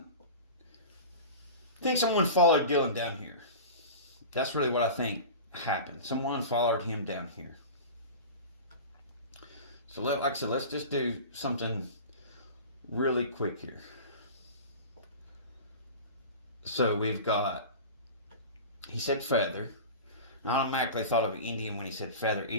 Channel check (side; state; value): both; inverted; correlation -0.33